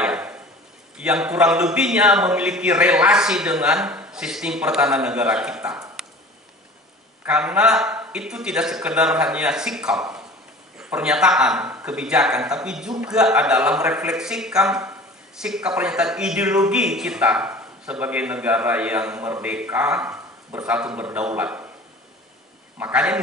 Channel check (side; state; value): both; normal; correlation 0.42